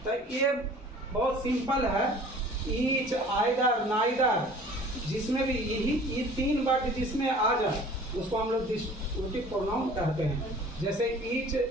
तो ये बहुत सिंपल है, ईच, आइदर, नाइदर, जिसमें भी ये 3 वर्ड जिसमें आ जाए उसको हम लोग डिस्ट्रीब्यूटिव प्रोनाउन कहते हैं। जैसे ईच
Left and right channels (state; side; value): normal; both; correlation 0.48